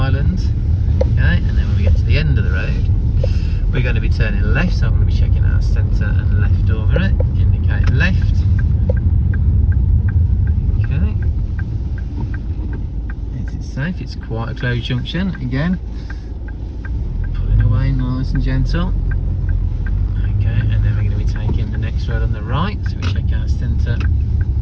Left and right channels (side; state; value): both; identical; correlation 1.00